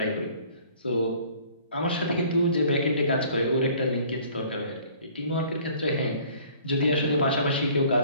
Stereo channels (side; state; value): both; inverted; correlation -0.53